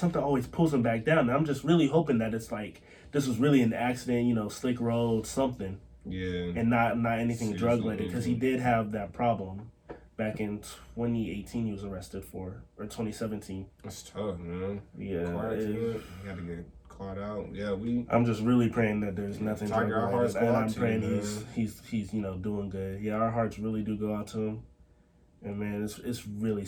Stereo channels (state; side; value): identical; both; correlation 1.00